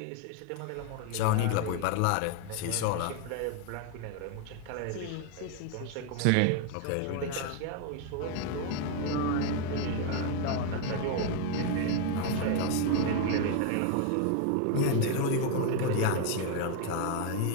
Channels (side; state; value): both; different; correlation 0.01